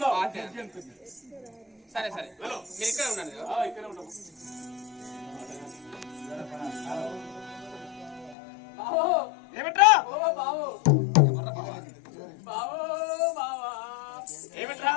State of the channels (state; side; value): drops out; right; at 8.3 s